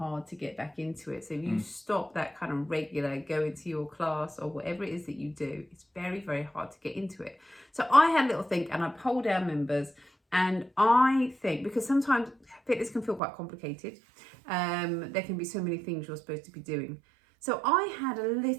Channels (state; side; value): drops out; left; at 13.2 s